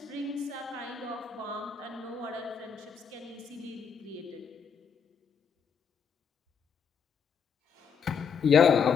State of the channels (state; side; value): quieter; right; 6.4 dB